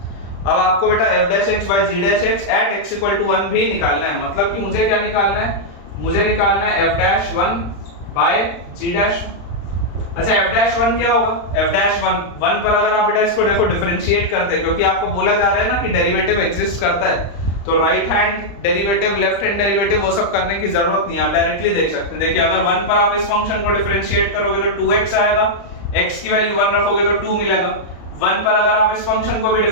अब आपको बेटा f'(x/g') at x = 1 भी निकालना है, मतलब कि मुझे क्या निकालना है, मुझे निकालना है f'(1/g'). अच्छा f'(1) क्या होगा, f'(1) पर अगर आप बेटा इसको देखो डिफरेंशिएट करते हैं, क्योंकि आपको बोला जा रहा है ना कि डेरिवेटिव एग्जिस्ट करता है, तो right hand derivative, left hand derivative वो सब करने की जरूरत नहीं है, आप डायरेक्टली देख सकते हैं। देखिए अगर 1 पर आप इस फंक्शन को डिफरेंशिएट करोगे तो 2x आएगा, x की वैल्यू 1 रखोगे तो 2 मिलेगा। 1 पर अगर आप इस फंक्शन को भी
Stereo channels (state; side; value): late; right; 35 ms